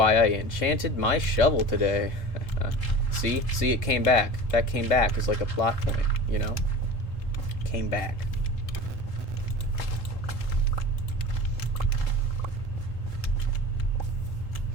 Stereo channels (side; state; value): right; late; 3.7 ms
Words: I enchanted my shovel today. See, it came back. That came back as like a plot point, you know? Came back.